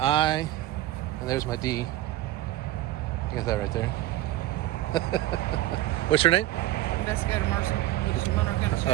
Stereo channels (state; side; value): quieter; left; 15.2 dB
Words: and there's my D. You got that right there. What's your name? Investigator Mercer with the Monroe County